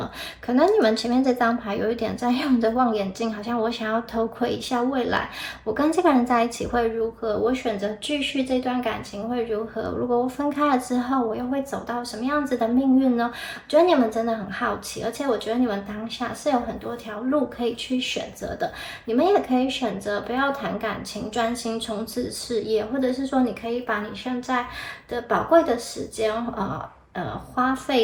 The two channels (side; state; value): both; identical; correlation 1.00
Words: 可能你们前面这张牌有一点在用着望远镜，好像我想要偷窥一下未来，我跟这个人在一起会如何？我选择继续这段感情会如何？如果我分开了之后，我又会走到什么样子的命运呢？我觉得你们真的很好奇，而且我觉得你们当下是有很多条路可以去选择的。你们也可以选择不要谈感情，专心冲刺事业，或者是说你可以把你现在的宝贵的时间，花